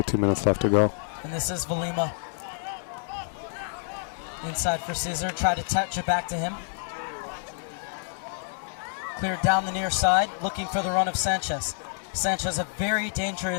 minutes left to go. And this is Valima. Inside for Scissor, try to touch it back to him. Cleared down the near side, looking for the run of Sanchez. Sanchez, a very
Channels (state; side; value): silent; right; 60 dB below the other